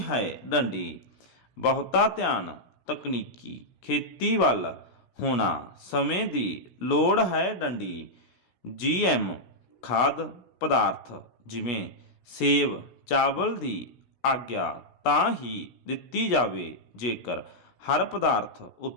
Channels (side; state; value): right; late; 16 ms